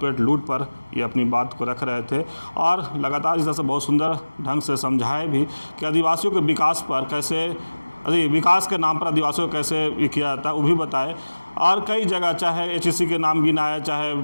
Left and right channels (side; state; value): both; inverted; correlation -1.00